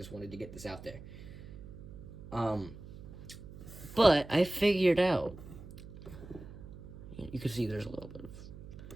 wanted to get this out there. But I figured out. You can see there's a little bit of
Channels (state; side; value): noise; right; hum, 14 dB below the sound